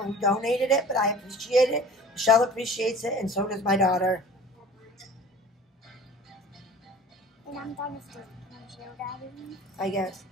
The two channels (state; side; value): normal; both; correlation 0.44